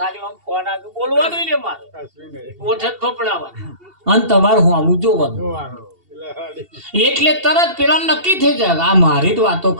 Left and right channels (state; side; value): late; left; 2.7 ms